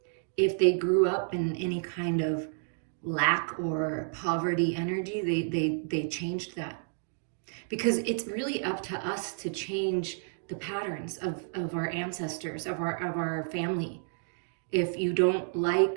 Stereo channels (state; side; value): silent; left; digital silence